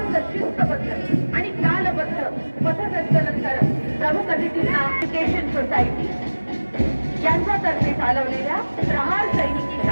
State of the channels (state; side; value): inverted; both; correlation -1.00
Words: शिस्तबद्ध आणि कालबद्ध पथसंचलन करत प्रमुख अतिथींना एज्युकेशन सोसायटी यांच्यातर्फे चालवलेल्या प्रहार सैनिकी